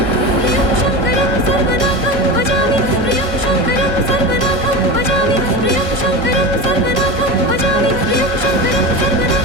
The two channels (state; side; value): late; left; 1.5 ms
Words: प्रियं शंकरं सर्वनाथं भजामि। प्रियं शंकरं सर्वनाथं भजामि। प्रियं शंकरं सर्वनाथं भजामि। प्रियं शंकरं